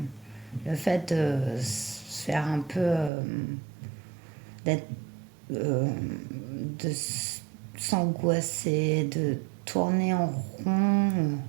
le fait de se faire un peu, d'être, de s'angoisser, de tourner en rond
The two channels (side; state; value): left; drops out; at 3.1 s